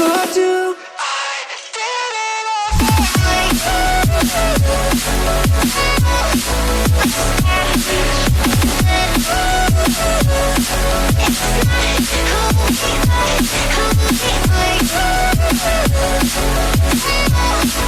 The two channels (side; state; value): both; identical; correlation 1.00